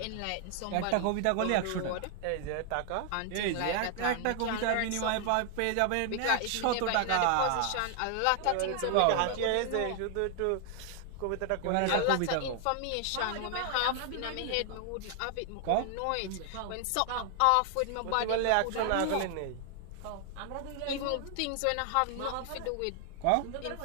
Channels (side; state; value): both; different; correlation 0.00